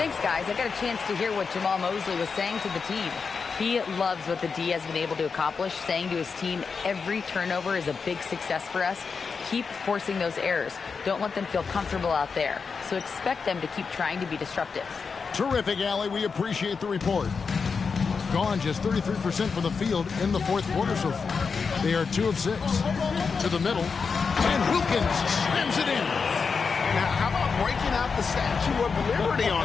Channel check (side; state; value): right; quieter; 5.3 dB